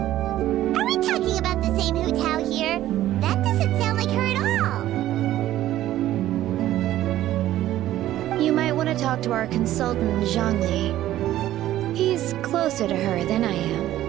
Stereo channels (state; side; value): quieter; left; 13.7 dB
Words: Are we talking about the same Hu Tao here? That doesn't sound like her at all. You might want to talk to our consultant, Zhang Li. He's closer to her than I